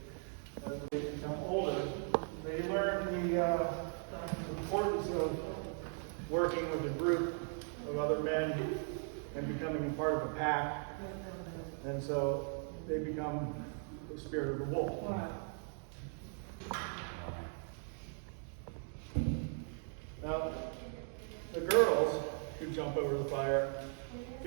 As they become older, they learn the importance of working with a group of other men and becoming a part of a pack. And so they become the spirit of the wolf. Wow. Now, the girls who jump over the fire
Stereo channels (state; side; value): silent; left; 52 dB below the other